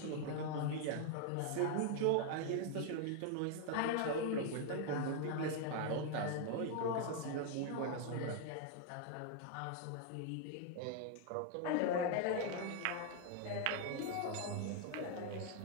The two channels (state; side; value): different; both; correlation 0.00